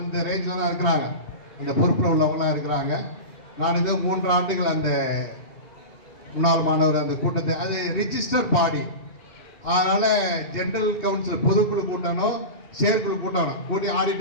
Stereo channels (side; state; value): right; late; 1.9 ms